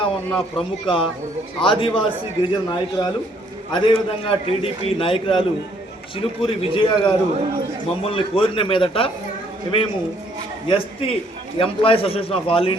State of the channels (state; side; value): normal; both; correlation 0.66